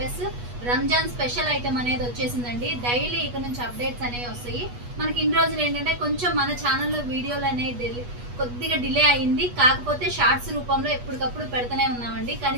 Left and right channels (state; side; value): late; left; 8.3 ms